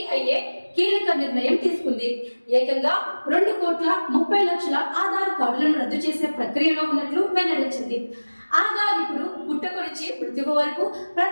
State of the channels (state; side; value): inverted; both; correlation -1.00